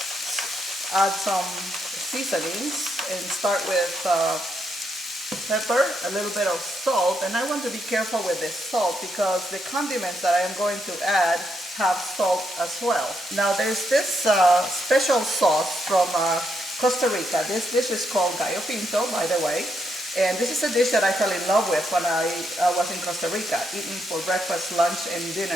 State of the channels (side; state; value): both; normal; correlation 0.79